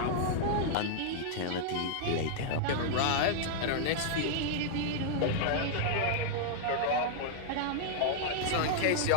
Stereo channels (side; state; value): both; different; correlation -0.01